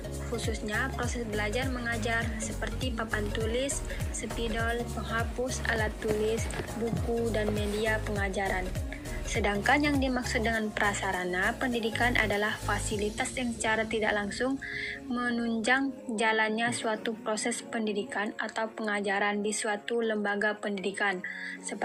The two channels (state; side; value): identical; both; correlation 1.00